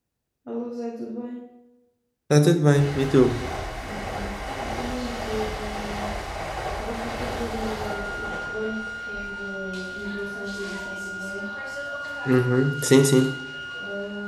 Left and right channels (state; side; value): identical; both; correlation 1.00